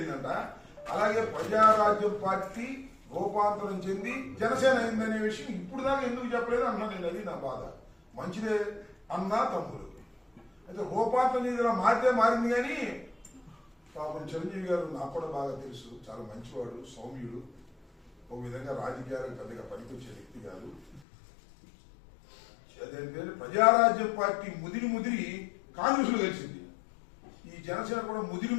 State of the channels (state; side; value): drops out; right; at 21.0 s